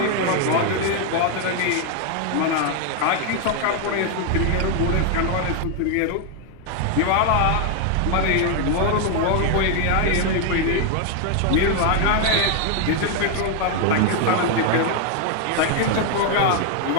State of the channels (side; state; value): both; different; correlation 0.01